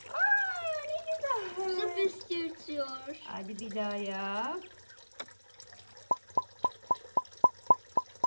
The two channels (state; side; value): inverted; both; correlation -1.00